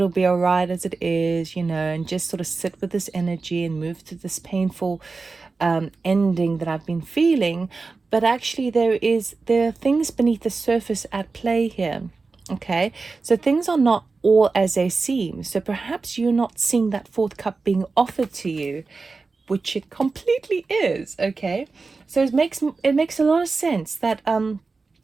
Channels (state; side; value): quieter; left; 4.1 dB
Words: be all right as it is, you know, and just sort of sit with this energy and move through this painful ending that I've been feeling. But actually there are things beneath the surface at play here. Okay, so things are not all as they seem. So perhaps you're not seeing that fourth cup being offered to you, which it completely is. Okay, so it makes a lot of sense that